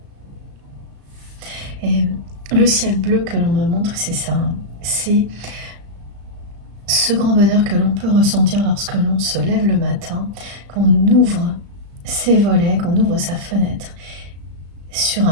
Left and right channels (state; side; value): late; left; 35 ms